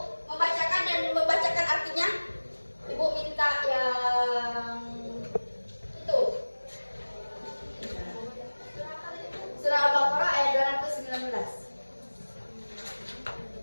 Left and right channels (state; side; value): inverted; both; correlation -1.00